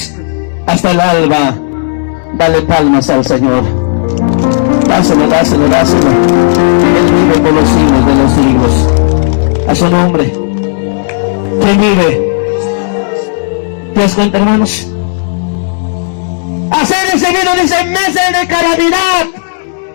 hasta el alba. Dale palmas al Señor. Dáselo, dáselo, dáselo. Él vive por los siglos de los siglos. A su nombre. ¿Quién vive? ¿Te das cuenta, hermanos? Hacer recibido, dice, meses de calamidad.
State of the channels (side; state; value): right; silent; digital silence